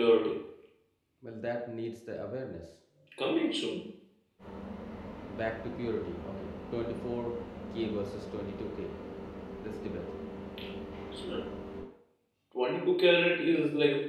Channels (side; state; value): both; identical; correlation 1.00